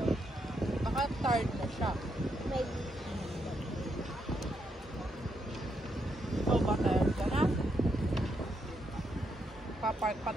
Baka tired na siya. Maybe. So, ba tired ka na? Papark pa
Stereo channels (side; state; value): both; normal; correlation 0.79